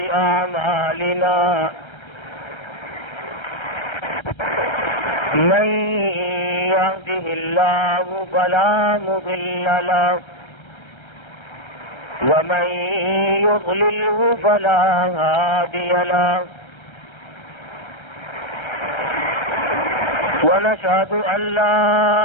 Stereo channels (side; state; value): right; late; 1.3 ms